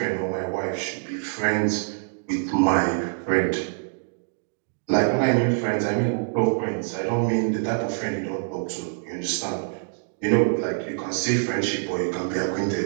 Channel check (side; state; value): left; silent; digital silence